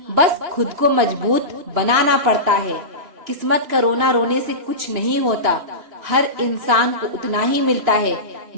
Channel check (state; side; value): late; left; 2.9 ms